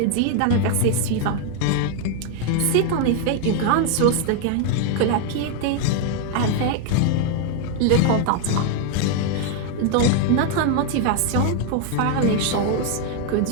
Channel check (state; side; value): different; both; correlation 0.00